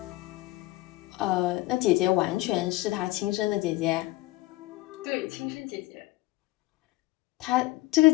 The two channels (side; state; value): right; quieter; 19.1 dB